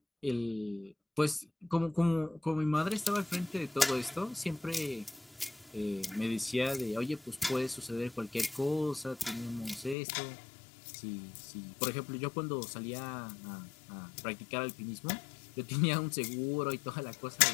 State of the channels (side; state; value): right; drops out; at 10.0 s